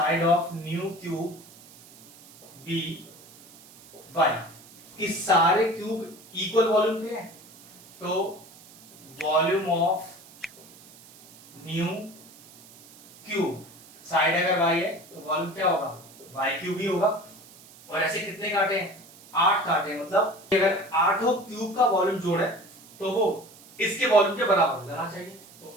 of new cube be y, कि सारे क्यूब इक्वल वॉल्यूम के हैं, तो volume of new cube, side अगर वाई है तो वॉल्यूम क्या होगा, वाई क्यूब ही होगा। और ऐसे कितने काटे हैं, 8 काटे हैं, मतलब अगर 8 क्यूब का वॉल्यूम जोड़े तो वो इसके वॉल्यूम के बराबर होना चाहिए। तो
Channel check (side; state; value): right; noise; hiss, 22 dB below the sound